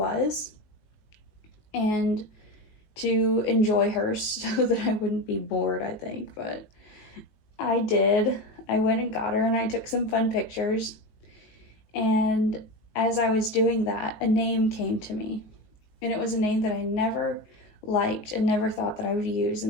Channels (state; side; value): late; right; 19 ms